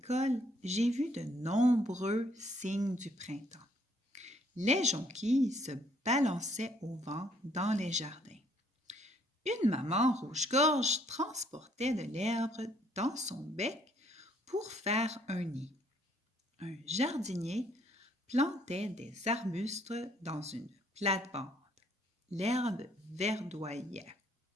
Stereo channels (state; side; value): normal; both; correlation 0.66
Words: j'ai vu de nombreux signes du printemps. Les jonquilles se balançaient au vent dans les jardins. Une maman rouge-gorge transportait de l'herbe dans son bec pour faire un nid. Un jardinier plantait des arbustes dans une plate-bande. L'herbe verdoyait.